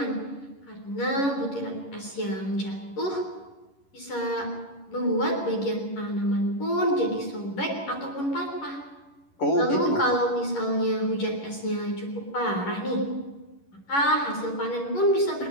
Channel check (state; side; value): late; right; 11 ms